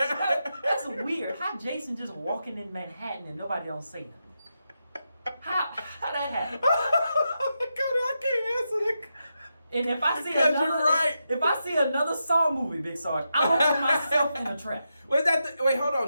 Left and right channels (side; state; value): both; inverted; correlation -0.87